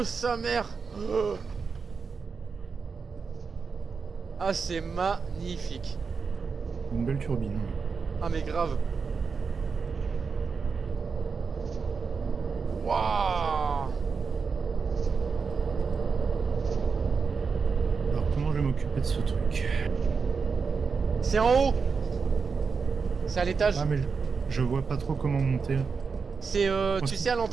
sa mère. Ah, c'est magnifique. Une belle turbine. Ah mais grave. Waouh. Alors comment je vais m'occuper de ce truc? C'est en haut. C'est à l'étage. Ah mais je vois pas trop comment monter. C'est tu sais à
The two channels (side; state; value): left; quieter; 5.3 dB